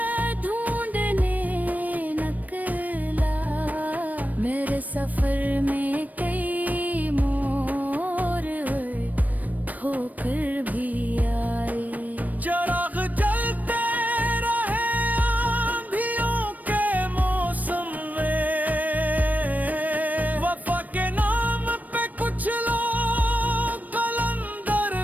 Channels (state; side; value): late; left; 0.079 ms